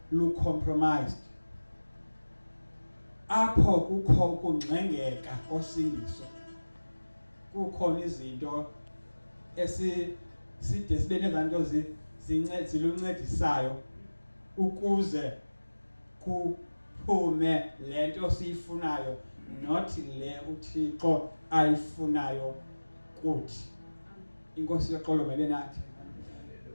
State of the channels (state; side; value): inverted; both; correlation -1.00